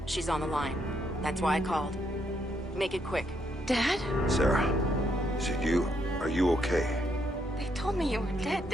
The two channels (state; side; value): normal; both; correlation 0.75